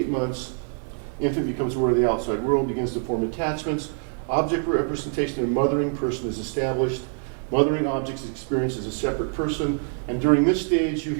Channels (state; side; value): silent; left; 59 dB below the other